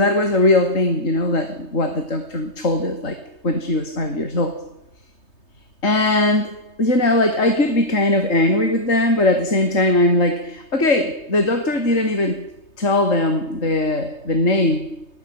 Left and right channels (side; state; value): right; late; 3.2 ms